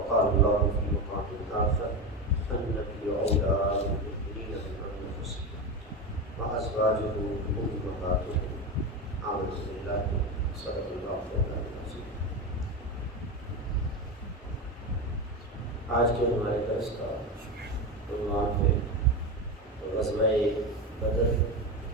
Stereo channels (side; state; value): both; normal; correlation 0.18